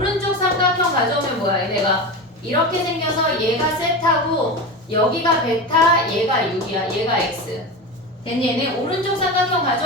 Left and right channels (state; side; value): normal; both; correlation 0.24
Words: 삼각형 가져오면 뭐야? 얘네가 이렇게 생겨서 얘가 세타고 여기가 베타 얘가 6이야. 얘가 x. 됐니? 얘네 오른쪽 삼각형